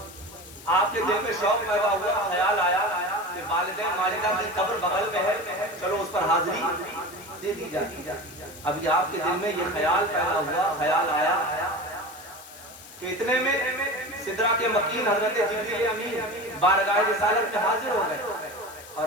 آپ کے دل میں شوق پیدا ہوا، خیال آیا کہ والدہ ماجدہ کی قبر بغل میں ہے، چلو اس پر حاضری دے دی جائے. ابھی آپ کے دل میں یہ خیال پیدا ہوا، خیال آیا کہ اتنے میں سدرہ کے مکین حضرت جبریل امین بارگاہ رسالت میں حاضر ہو گئے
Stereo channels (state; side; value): noise; left; hiss, 18 dB below the sound